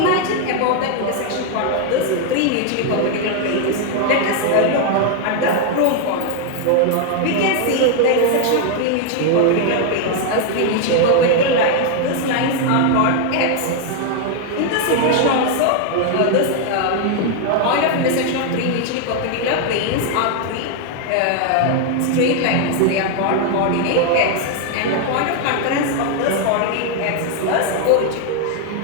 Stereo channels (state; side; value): different; both; correlation 0.00